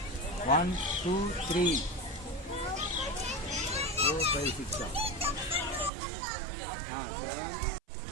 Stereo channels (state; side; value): drops out; left; at 5.9 s